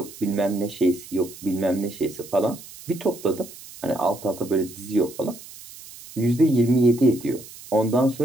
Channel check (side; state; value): right; noise; hiss, 17 dB below the sound